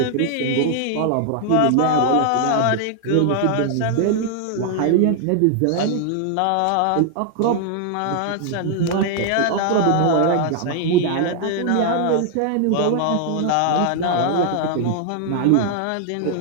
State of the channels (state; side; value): different; both; correlation 0.00